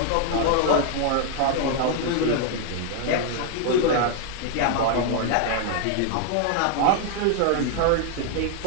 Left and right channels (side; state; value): both; different; correlation 0.00